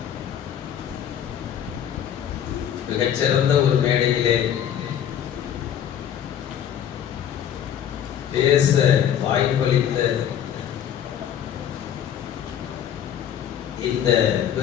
மிகச்சிறந்த ஒரு மேடையிலே பேச வாய்ப்பளித்த இந்த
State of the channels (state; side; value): quieter; right; 9.6 dB